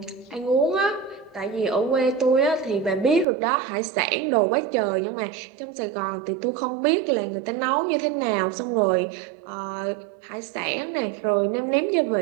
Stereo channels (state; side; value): drops out; left; at 3.2 s